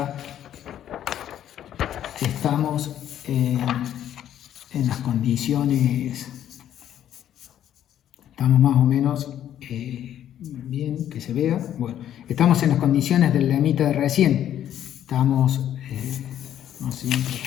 estamos en las condiciones Estamos más o menos bien, que se vea. Bueno, estamos en las condiciones del lemita de recién. Estamos, no sé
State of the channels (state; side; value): quieter; right; 10.9 dB